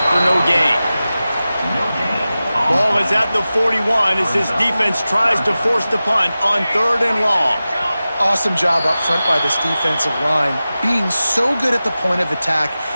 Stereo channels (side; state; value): both; inverted; correlation -0.95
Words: for no gain. Ball is at the 41 as this defense tries to force the punt on 3rd and long. Awesome job up front by this defensive line, being so good at the point of attack